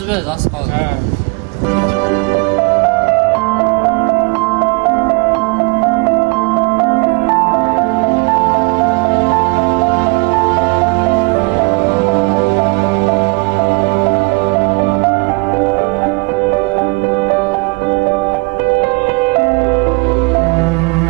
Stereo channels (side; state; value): left; quieter; 30.8 dB